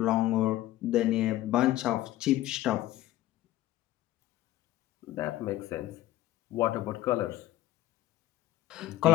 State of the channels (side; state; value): right; quieter; 15.0 dB